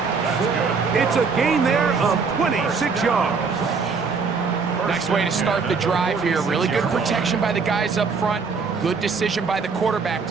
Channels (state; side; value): quieter; left; 5.1 dB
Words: It's a gain there of 26 yards. Nice way to start the drive here. Really good protection by the guys up front. Good decision by the quarterback